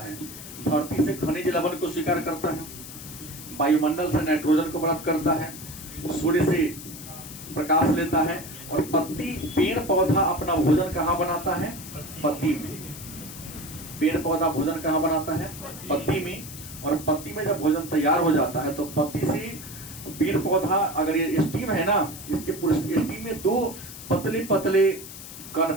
धरती से खनिज लवण को स्वीकार करता है, वायुमंडल से नाइट्रोजन को प्राप्त करता है, सूर्य से प्रकाश लेता है और पत्ती, पेड़ पौधा अपना भोजन कहाँ बनाता है, पत्ती में। पेड़ पौधा भोजन कहाँ बनाता है, पत्ती में। और पत्ती में जब भोजन तैयार हो जाता है तो पत्ती से पेड़ पौधा, अगर ये स्टीम है ना, इसके पूरे स्टीम में दो पतले पतले कण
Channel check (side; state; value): left; noise; hiss, 13 dB below the sound